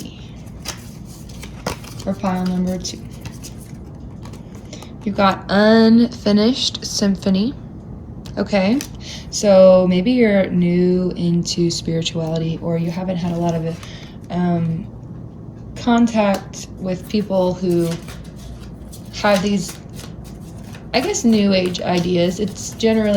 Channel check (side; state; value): both; identical; correlation 1.00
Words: for pile number 2? You've got unfinished symphony. Okay, so maybe you're new into spirituality, or you haven't had a lot of contact with people who have these, I guess, new age ideas. It's